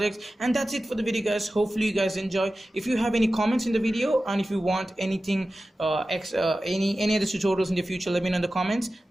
And that's it for the video, guys. Hopefully you guys enjoy. If you have any comments in the video, and if you want anything any other tutorials in the future, let me know in the comments.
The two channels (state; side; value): normal; both; correlation 0.95